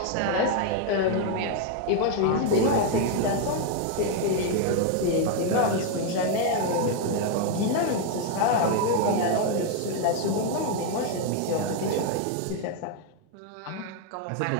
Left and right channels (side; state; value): both; different; correlation 0.01